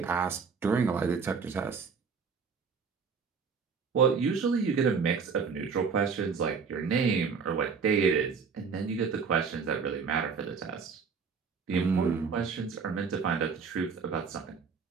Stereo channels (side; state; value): left; quieter; 5.6 dB